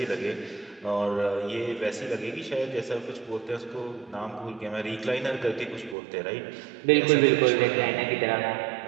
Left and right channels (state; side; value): drops out; left; at 6.0 s